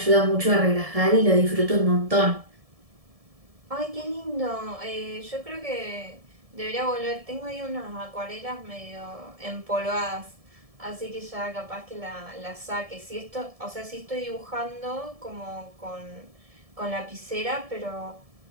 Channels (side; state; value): left; late; 1.7 ms